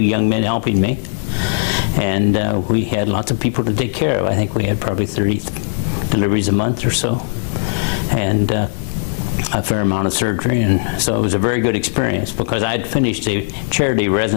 men helping me, and we had lots of people to take care of. I think we had probably 30 deliveries a month or so, and a fair amount of surgery, and so it was a very good experience because I had finished a charity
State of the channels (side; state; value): right; silent; digital silence